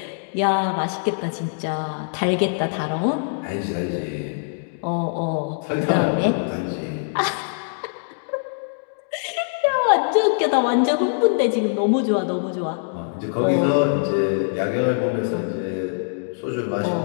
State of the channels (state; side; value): silent; right; digital silence